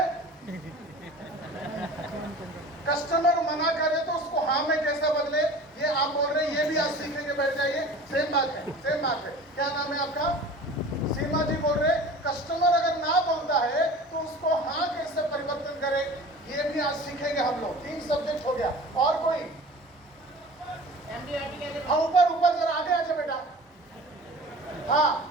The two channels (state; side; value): normal; both; correlation 0.40